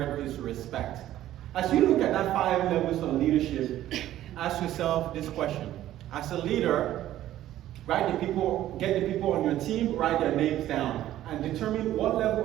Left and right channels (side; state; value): left; quieter; 13.3 dB